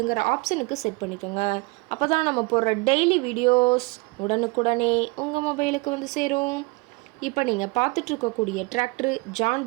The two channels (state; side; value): quieter; left; 27.4 dB